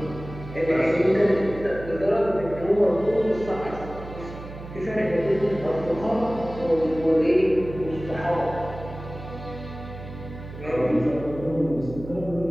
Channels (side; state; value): right; noise; hum, 13 dB below the sound